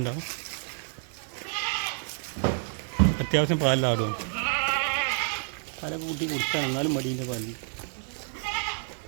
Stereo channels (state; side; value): silent; left; 59 dB below the other